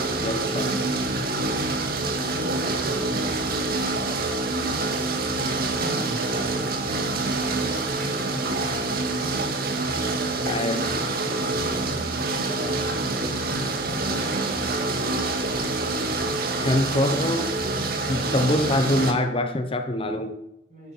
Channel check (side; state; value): both; normal; correlation 0.35